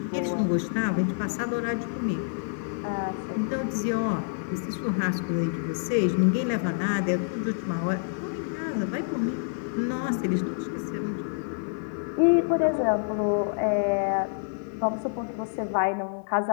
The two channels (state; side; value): silent; right; digital silence